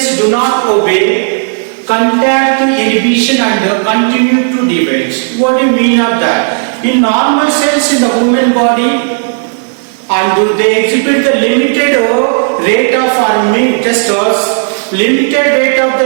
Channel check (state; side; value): silent; left; digital silence